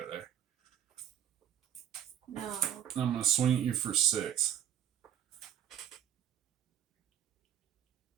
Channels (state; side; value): quieter; left; 10.1 dB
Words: there. No. I'm gonna swing at you for 6.